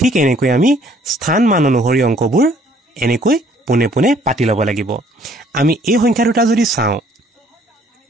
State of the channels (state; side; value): normal; both; correlation 0.60